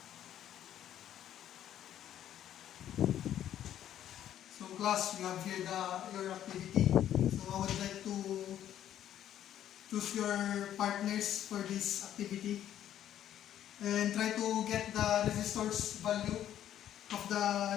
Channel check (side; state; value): right; quieter; 11.1 dB